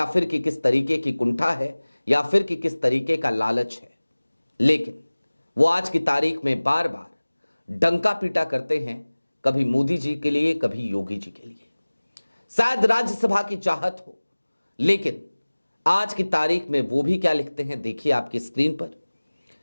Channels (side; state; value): both; inverted; correlation -1.00